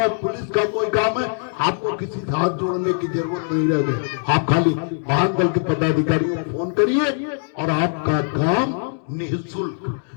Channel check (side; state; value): right; silent; 65 dB below the other